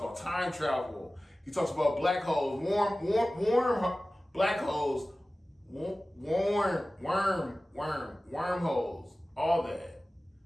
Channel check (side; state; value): both; normal; correlation 0.97